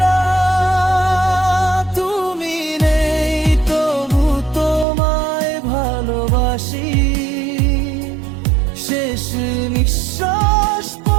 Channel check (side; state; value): left; drops out; at 4.9 s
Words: না। তুমি নেই তবু তোমায় ভালোবাসি, শেষ নিঃশ্বাস